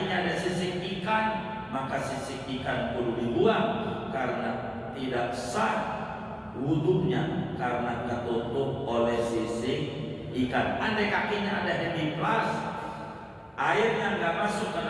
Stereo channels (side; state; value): both; identical; correlation 1.00